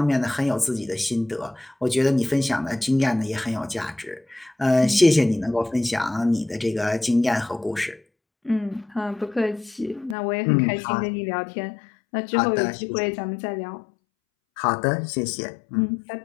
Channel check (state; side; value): drops out; right; at 10.2 s